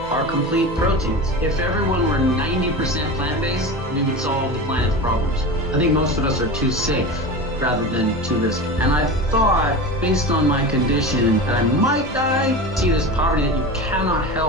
are complete proteins. If everyone were 90% plant-based, we would solve the planet's problems. I think most of us are too safe rather than too risky. And I thought, based on my condition, that I might die. See this poverty that you cannot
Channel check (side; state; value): both; normal; correlation 0.28